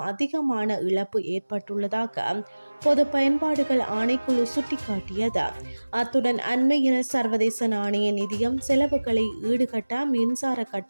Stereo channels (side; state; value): both; inverted; correlation -1.00